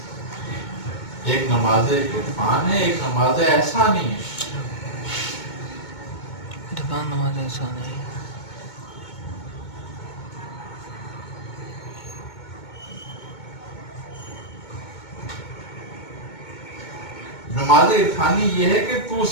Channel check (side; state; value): right; late; 2.2 ms